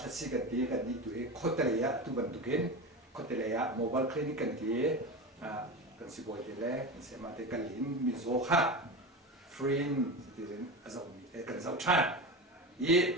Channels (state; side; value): normal; both; correlation 0.24